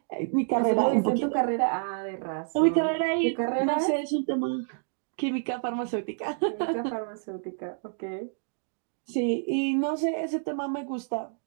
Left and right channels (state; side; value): silent; left; digital silence